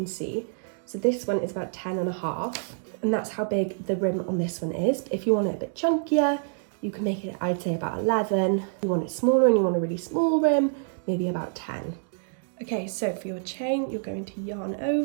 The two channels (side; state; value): left; silent; digital silence